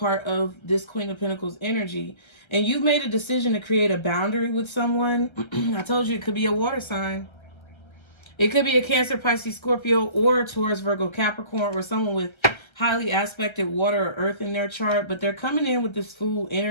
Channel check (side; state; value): right; late; 1.3 ms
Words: of this Queen of Pentacles energy. And you've made a decision to create a boundary with someone. I told you it could be a water sign. It could be a Cancer, Pisces, Scorpio, or a Taurus, Virgo, Capricorn, or someone with highly aspected water or earth in their chart. But they're coming in with this Fool